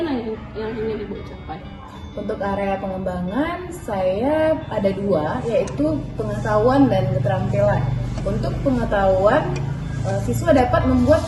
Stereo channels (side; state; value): both; identical; correlation 1.00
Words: yang ingin Ibu capai? Untuk area pengembangan saya ada dua, yaitu pengetahuan dan keterampilan. Untuk pengetahuan, siswa dapat membuat